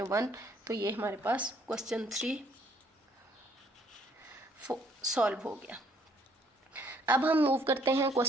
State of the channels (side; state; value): both; normal; correlation 0.65